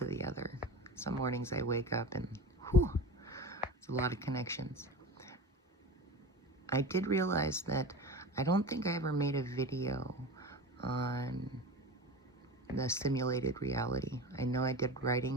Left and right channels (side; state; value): both; normal; correlation 0.31